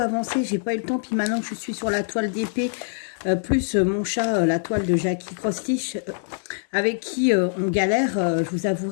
avancé. J'ai pas eu le temps. Puis maintenant que je suis sur la toile d'épée, plus mon chat, la toile de Jackie Cross-Stitch, avec qui on galère, je vous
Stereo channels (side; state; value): right; silent; digital silence